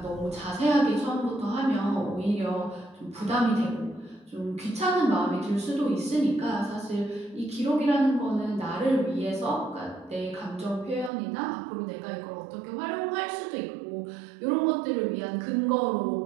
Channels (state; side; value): drops out; left; at 11.1 s